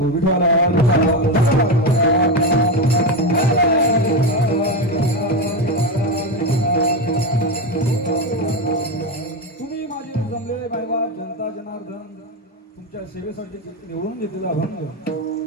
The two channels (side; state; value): both; normal; correlation 0.14